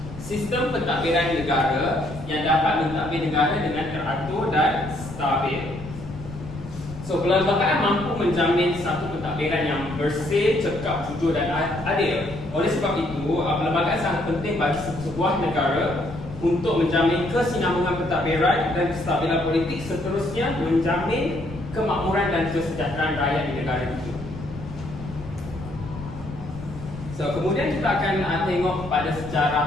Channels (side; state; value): left; noise; rumble, 12 dB below the sound